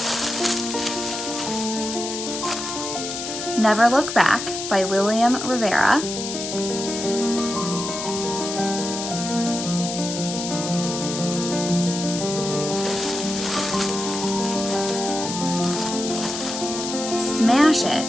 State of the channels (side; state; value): left; noise; hiss, 6 dB below the sound